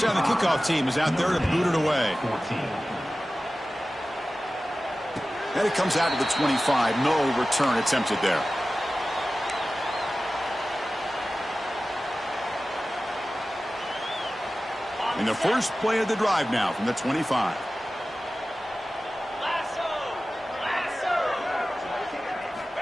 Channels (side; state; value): both; normal; correlation 0.96